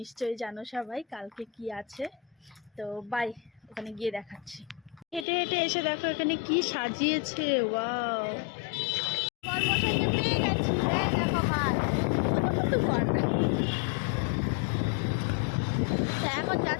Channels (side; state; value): right; drops out; at 5.2 s